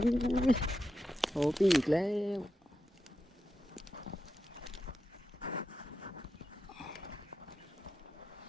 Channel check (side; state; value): both; normal; correlation 0.88